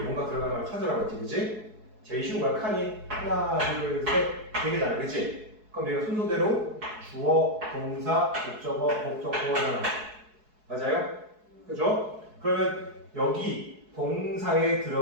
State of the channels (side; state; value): left; late; 4.7 ms